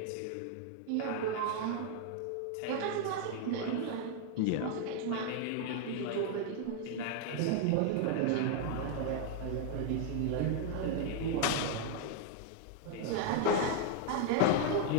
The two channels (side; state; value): both; different; correlation 0.00